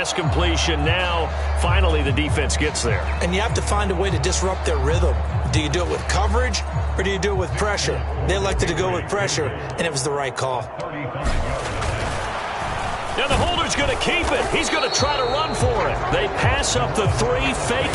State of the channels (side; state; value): both; identical; correlation 1.00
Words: completion. Now, finally, the defense gets there. And you have to find a way to disrupt their rhythm. Do you do it with coverage, or do you do it with pressure? They elected to go with pressure, and it was the right call. And the holder's going to keep it. He's going to try to run for it. They pass up the 3, fake